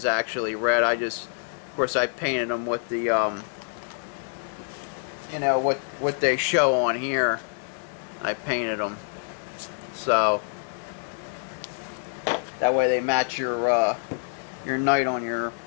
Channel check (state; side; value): silent; right; digital silence